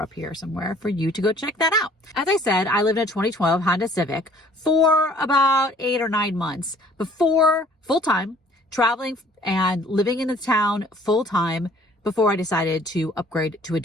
here somewhere for you to go check that out. As I said, I lived in a 2012 Honda Civic for about 8 or 9 months before full-time, traveling and living in the town full-time before I decided to upgrade to a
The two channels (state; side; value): normal; both; correlation 0.55